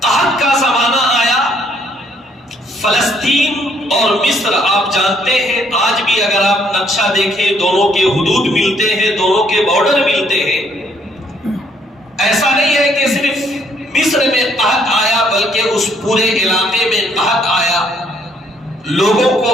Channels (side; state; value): both; normal; correlation 0.67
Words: قحط کا زمانہ آیا، فلسطین اور مصر آپ جانتے ہیں، آج بھی اگر آپ نقشہ دیکھیں دونوں کے حدود ملتے ہیں، دونوں کے بارڈر ملتے ہیں۔ ایسا نہیں ہے کہ صرف مصر میں قحط آیا بلکہ اس پورے علاقے میں قحط آیا، لوگوں